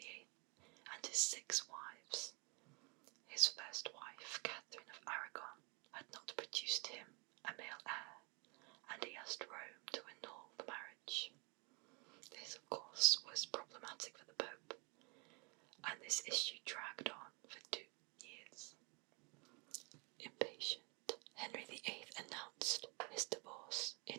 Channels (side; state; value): left; quieter; 31.2 dB